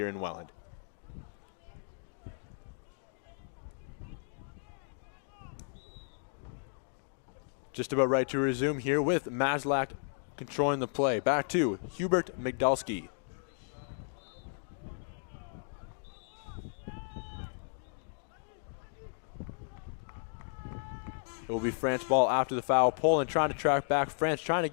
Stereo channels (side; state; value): right; silent; digital silence